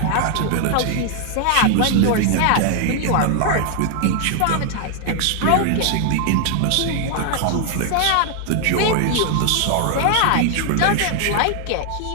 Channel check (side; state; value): both; different; correlation 0.00